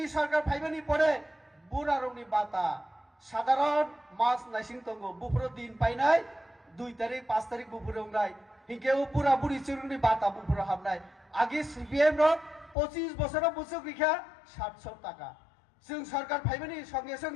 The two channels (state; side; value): drops out; right; at 12.8 s